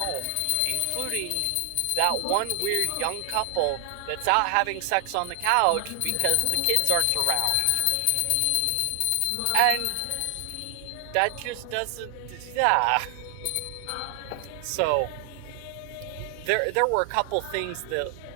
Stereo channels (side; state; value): both; different; correlation 0.00